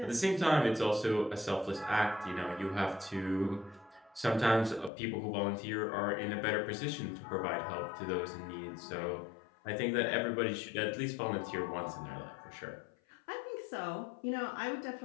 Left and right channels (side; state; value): right; drops out; at 4.9 s